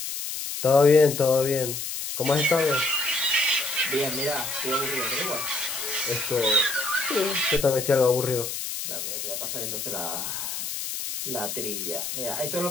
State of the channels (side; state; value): left; noise; hiss, 5 dB below the sound